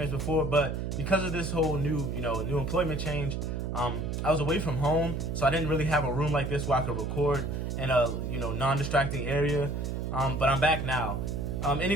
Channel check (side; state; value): right; noise; hum, 3 dB below the sound